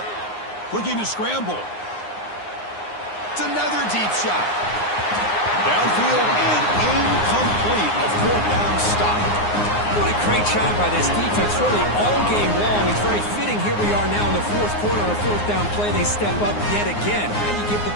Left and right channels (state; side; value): late; right; 9.6 ms